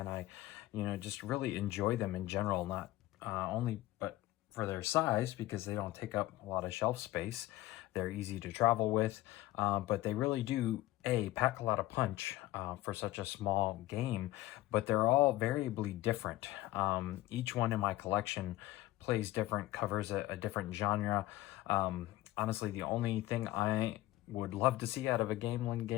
I, just really enjoy them in general, not only but for their size, because they don't take up a lot of shelf space. They're easy to travel with, but they really do pack a lot of punch for such a small game, but they're all variably different. Each one in my collection plays different, covers a different genre. Honestly, the only thing I would love to see out of a Gamelyn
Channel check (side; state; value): right; quieter; 16.7 dB